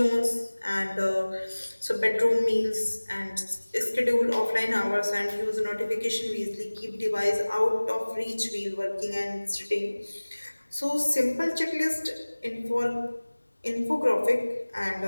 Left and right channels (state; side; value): inverted; both; correlation -1.00